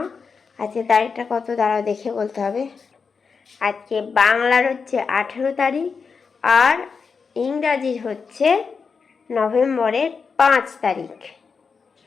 আজকে তারিখটা কত দাঁড়াও দেখে বলতে হবে। আজকে বাংলার হচ্ছে 18 তারিখ আর ইংরাজির হচ্ছে নভেম্বরের 5 তারিখ।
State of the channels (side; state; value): right; quieter; 5.4 dB